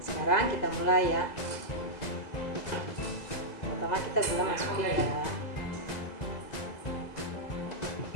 kita mulai ya. Pertama kita gula masukin ya.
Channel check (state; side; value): late; right; 2.0 ms